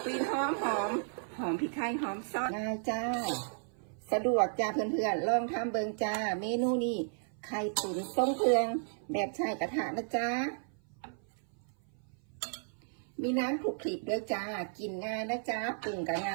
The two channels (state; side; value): silent; left; 55 dB below the other